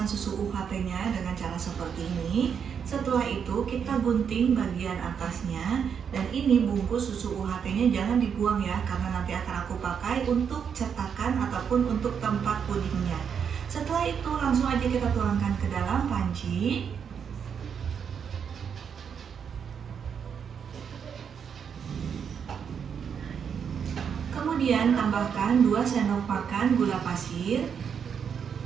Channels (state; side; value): quieter; left; 7.2 dB